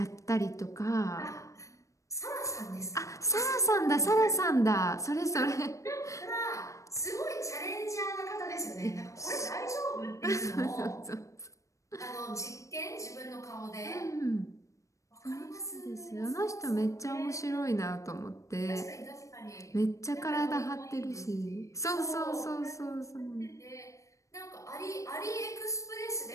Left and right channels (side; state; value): right; late; 0.15 ms